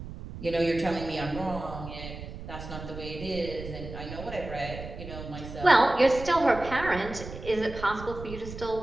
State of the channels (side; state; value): right; noise; rumble, 11 dB below the sound